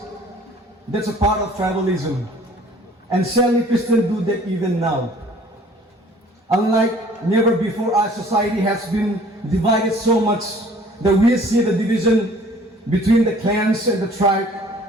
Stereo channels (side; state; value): both; normal; correlation 0.53